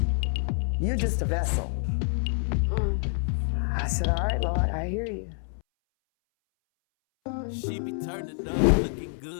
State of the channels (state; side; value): silent; right; 60 dB below the other